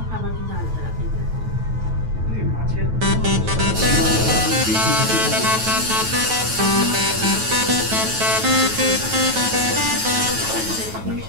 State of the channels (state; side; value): late; left; 9.2 ms